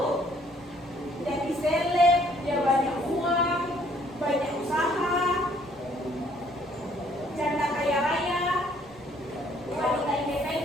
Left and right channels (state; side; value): noise; left; rumble, 27 dB below the sound